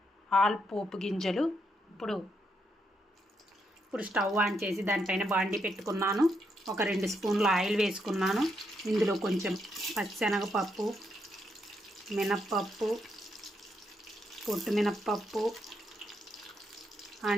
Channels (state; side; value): normal; both; correlation 0.79